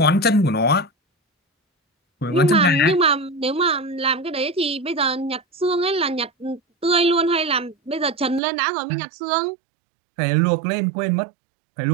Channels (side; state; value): left; drops out; at 8.4 s